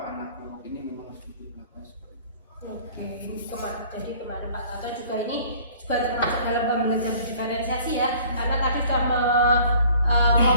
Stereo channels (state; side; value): inverted; both; correlation -0.52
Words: anak kelompok ini memang harus butuh perlakuan seperti itu. Oke, jadi kemarin Pak Tato juga ini juga termasuk dalam pembelajaran diferensiasi ya, karena tadi sudah